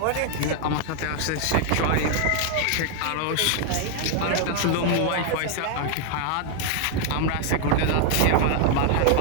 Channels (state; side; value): different; both; correlation 0.00